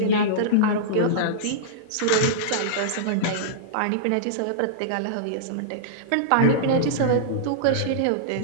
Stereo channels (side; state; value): both; different; correlation -0.03